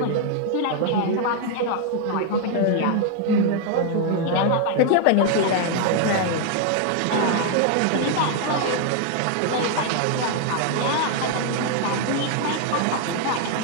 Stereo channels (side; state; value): both; different; correlation 0.00